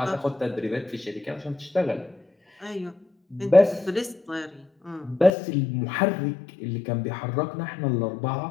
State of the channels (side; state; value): right; drops out; at 5.3 s